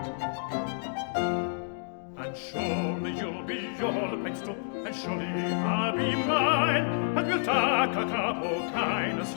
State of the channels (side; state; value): right; silent; digital silence